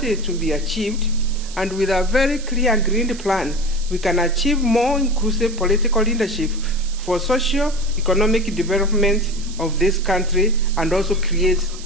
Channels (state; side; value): noise; right; hiss, 15 dB below the sound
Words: is to be achieved, and with a very clear and green plan, we can achieve more inclusive political leadership for socio-economic development of this country and also create